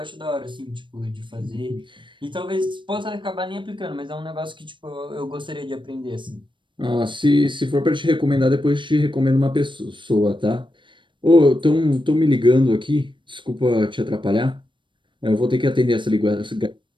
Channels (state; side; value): late; left; 0.23 ms